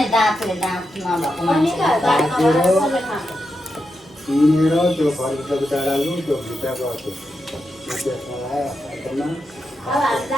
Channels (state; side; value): normal; both; correlation 0.87